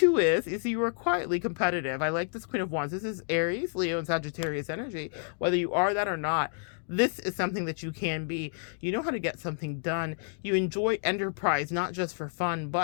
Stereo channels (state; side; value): silent; right; digital silence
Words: is you are quietly competitive. I like this Queen of Wands. This is Aries, Leo, and Sagittarius energy. Whether you are that or not, this is something that you can be. You know how to get something done. You enjoy enterprise, not just for fun,